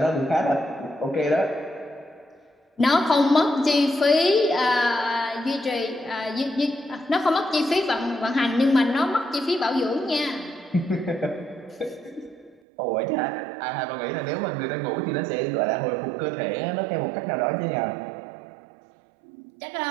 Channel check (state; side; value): drops out; left; at 12.6 s